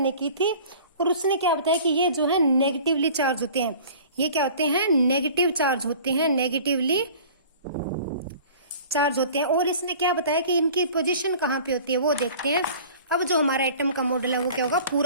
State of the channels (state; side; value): inverted; both; correlation -0.45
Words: की थी। और उसने क्या बताया कि ये जो है नेगेटिवली चार्ज होते हैं। ये क्या होते हैं? नेगेटिव चार्ज होते हैं, नेगेटिवली चार्ज होते हैं। और इसने क्या बताया कि इनकी पोजीशन कहाँ पे होती है वो देखते हैं। अब जो हमारा एटम का मॉडल है वो क्या होगा?